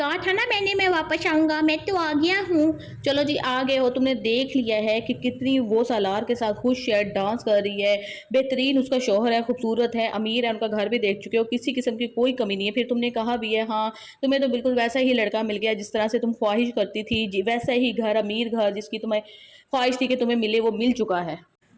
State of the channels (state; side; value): identical; both; correlation 1.00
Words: था ना मैंने मैं वापस आऊँगा, मैं तो आ गया हूँ। चलो जी आ गए हो, तुमने देख लिया है कि कितनी वो सालार के साथ खुश है, डांस कर रही है, बेहतरीन उसका शौहर है, खूबसूरत है, अमीर है, उनका घर भी देख चुके हो, किसी किस्म की कोई कमी नहीं है। फिर तुमने कहा भी है हाँ तुम्हें तो बिल्कुल वैसा ही लड़का मिल गया जिस तरह से तुम ख्वाहिश करती थी, जी वैसा ही घर, अमीर घर जिसकी तुम्हें ख्वाहिश थी कि तुम्हें मिले, वो मिल चुका है।